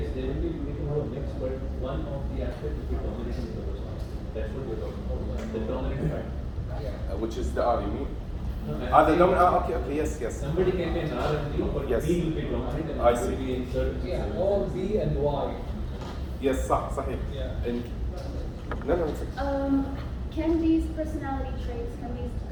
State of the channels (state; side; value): identical; both; correlation 1.00